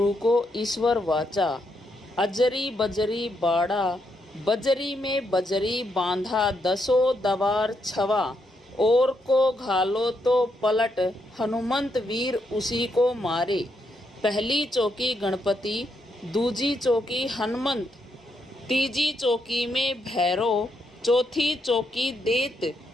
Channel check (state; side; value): normal; both; correlation 0.79